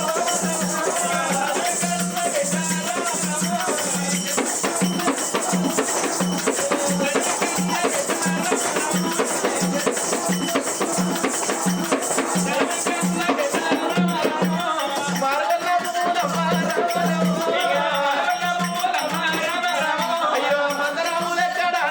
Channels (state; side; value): identical; both; correlation 1.00